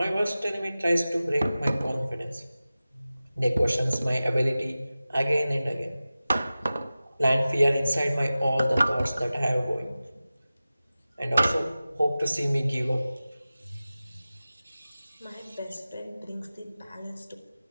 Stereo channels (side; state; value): both; inverted; correlation -0.96